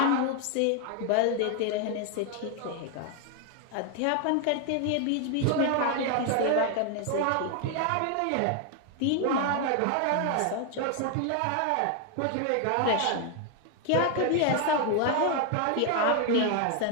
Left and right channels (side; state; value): both; different; correlation 0.00